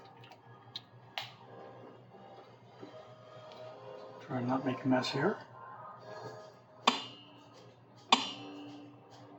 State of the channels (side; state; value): both; identical; correlation 1.00